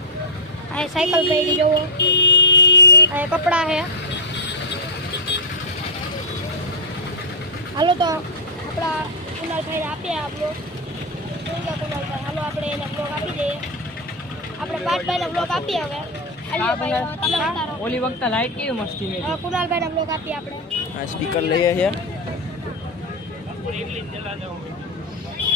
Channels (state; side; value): normal; both; correlation -0.04